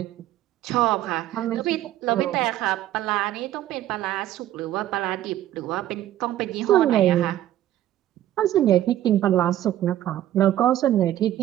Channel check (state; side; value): quieter; left; 13.0 dB